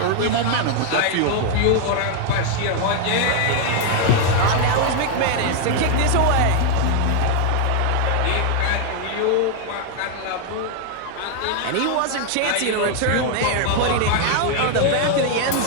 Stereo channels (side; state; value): both; different; correlation 0.00